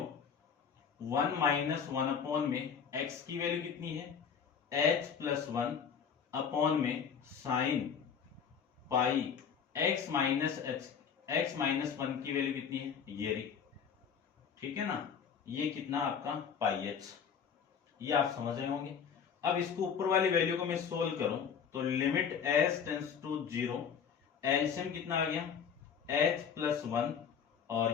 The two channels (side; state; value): right; quieter; 7.1 dB